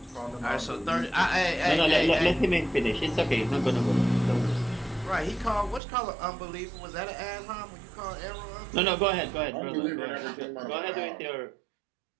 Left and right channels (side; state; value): left; drops out; at 5.8 s